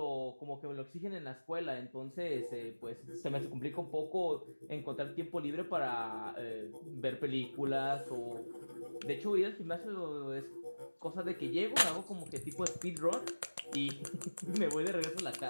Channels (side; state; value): both; inverted; correlation -1.00